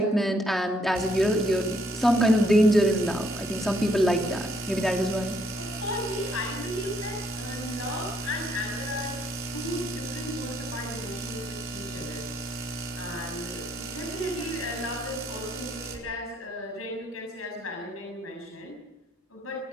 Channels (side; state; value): both; normal; correlation 0.70